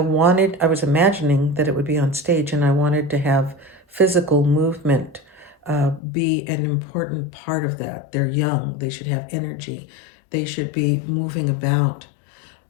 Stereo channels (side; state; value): right; drops out; at 6.0 s